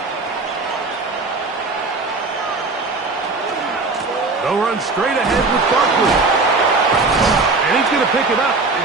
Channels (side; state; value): left; quieter; 3.7 dB